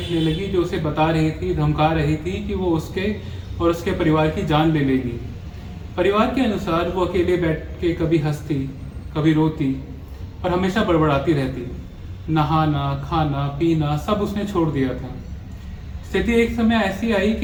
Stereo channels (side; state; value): both; identical; correlation 1.00